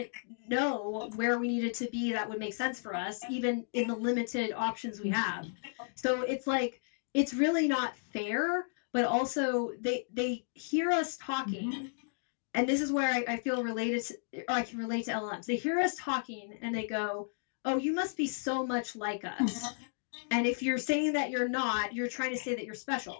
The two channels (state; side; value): silent; right; digital silence